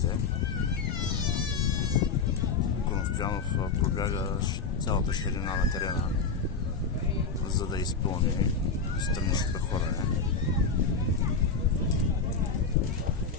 Коностоянов пробяга цялата ширина на терена, за да изпълни страничното хвърляне.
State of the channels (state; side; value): quieter; right; 4.8 dB